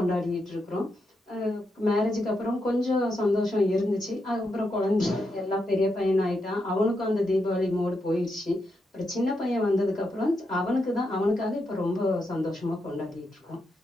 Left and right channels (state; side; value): normal; both; correlation 0.83